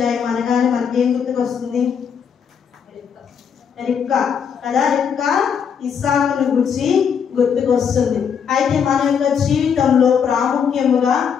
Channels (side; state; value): right; quieter; 7.2 dB